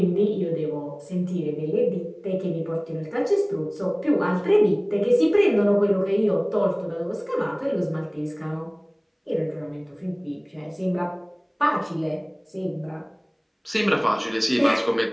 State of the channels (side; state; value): both; identical; correlation 1.00